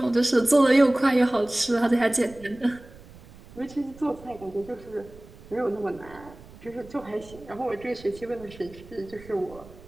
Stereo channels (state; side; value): noise; right; rumble, 20 dB below the sound